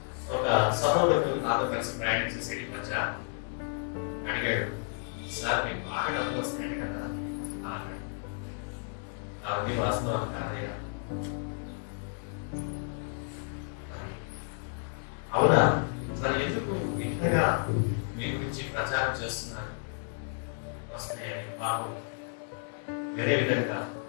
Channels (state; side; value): silent; right; 57 dB below the other